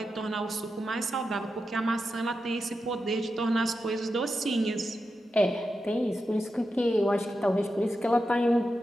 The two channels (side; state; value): both; normal; correlation 0.89